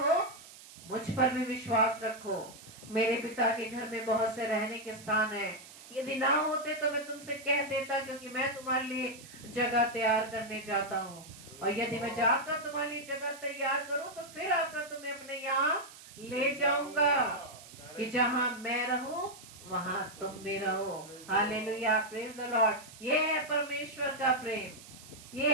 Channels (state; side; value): noise; right; hiss, 18 dB below the sound